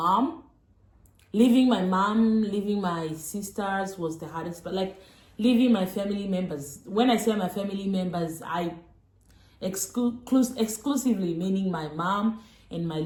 Leaving my mom, leaving my sisters was the hardest, but like leaving my family members. When I say my family members, I exclusively meaning my mom and my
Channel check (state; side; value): identical; both; correlation 1.00